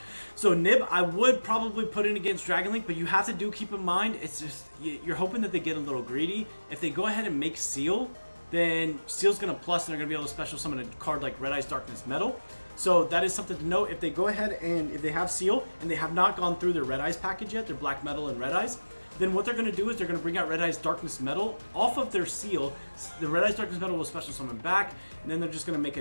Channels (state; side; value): inverted; both; correlation -1.00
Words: So Nib, I would probably put in against Dragon Link, but you have to keep in mind, it's just, you're hoping that they get a little greedy. If they go ahead and make Seal, then Seal's going to plus, and they're going to be able to special summon a card like Red Eyes Darkness Metal. So that is something to note. If they go ahead and if they have Seal, and they have not gone through their Red Eyes package yet, their Black Metal and Red Eyes, then what they're going to do is they're going to bring out Red Eyes Darkness Metal off of their Seal. The Red Eyes Darkness Metal will special summon back, and then they're just going to make